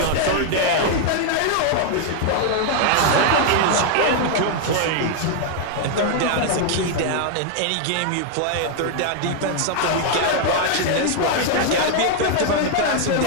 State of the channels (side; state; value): both; different; correlation 0.00